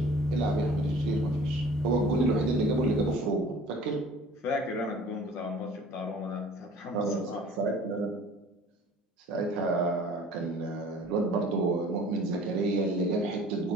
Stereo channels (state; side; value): normal; both; correlation 0.48